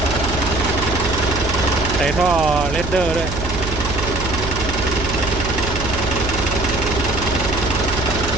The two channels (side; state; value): right; noise; hum, 6 dB below the sound